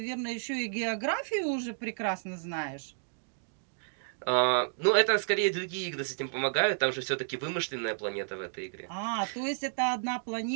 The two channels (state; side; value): silent; left; digital silence